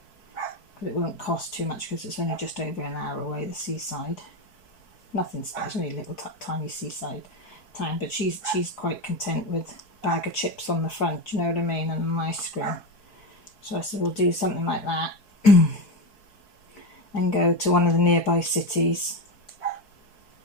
because it won't cost too much because it's only just over an hour away, the seaside. Nothing special, only a little tiny seaside town, but she's quite content with a bag of chips on the front, do you know what I mean, and an ice cream. So I said we'll do something like that and go to one of the nearby cities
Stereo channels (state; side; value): late; right; 4.6 ms